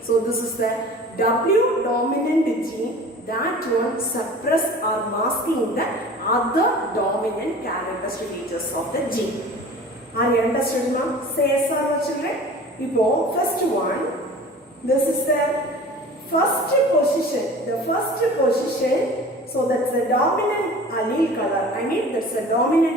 so this is the W dominant gene, that one suppress or masking the other dominant characteristic features of the gene. Are you understood now? Say yes or no, children? Now, first one, this is the first position. The first position, so that's the dominant allele color. That's the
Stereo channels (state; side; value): normal; both; correlation 0.42